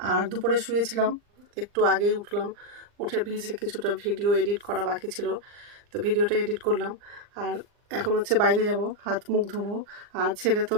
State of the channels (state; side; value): late; left; 39 ms